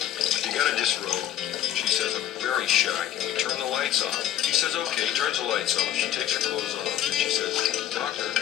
you gotta disrobe. She says, I'm very shy. Can we turn the lights off? He says, okay, turns the lights off. She takes her clothes off, and she says, doctor,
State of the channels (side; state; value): right; quieter; 11.6 dB